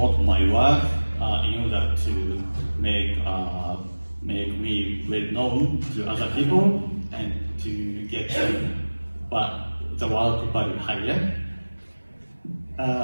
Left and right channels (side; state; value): both; inverted; correlation -1.00